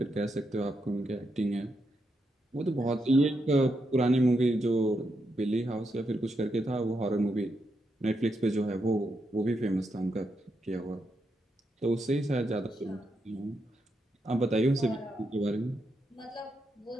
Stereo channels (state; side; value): normal; both; correlation 0.83